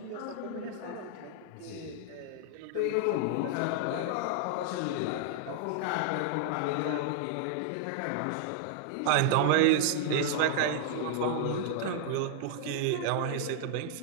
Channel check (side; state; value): both; different; correlation -0.01